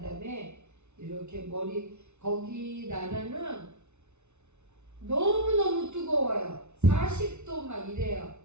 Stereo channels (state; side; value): late; left; 0.82 ms